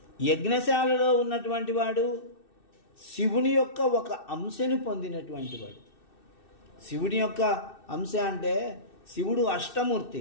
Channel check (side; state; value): right; late; 2.6 ms